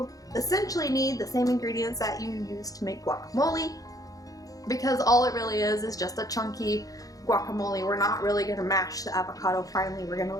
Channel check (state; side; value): late; right; 0.17 ms